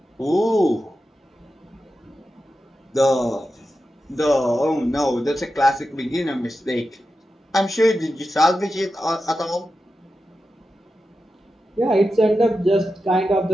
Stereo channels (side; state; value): both; normal; correlation 0.91